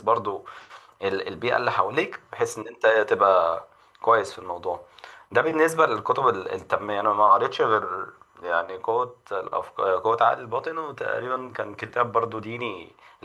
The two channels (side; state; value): both; identical; correlation 1.00